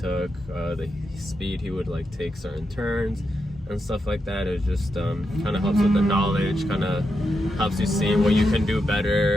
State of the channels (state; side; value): normal; both; correlation 0.85